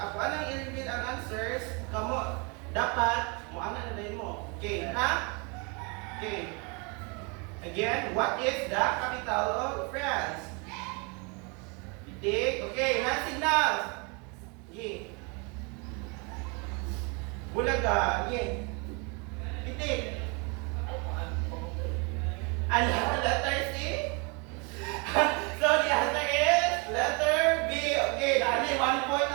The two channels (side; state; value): left; quieter; 32.0 dB